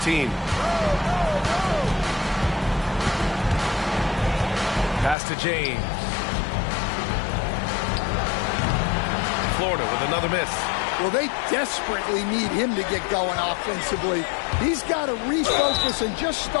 Pass to James. Florida with another miss. Well, they desperately need him to get going offensively. He's got to refocus and just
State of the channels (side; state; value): right; drops out; at 5.2 s